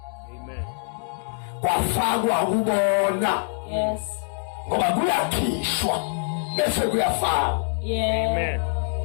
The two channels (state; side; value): silent; right; 62 dB below the other